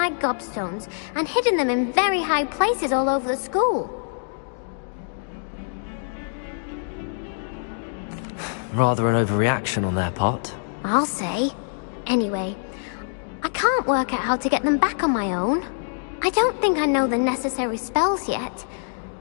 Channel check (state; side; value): silent; right; digital silence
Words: gobstones and hidden them in very high places all over the school. Rather an overreaction on their part. I'll say. Anyway, I can't work out how to get them back on my own. I don't think I know the necessary spells yet.